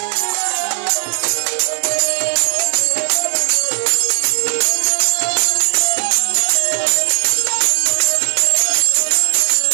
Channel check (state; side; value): silent; left; 69 dB below the other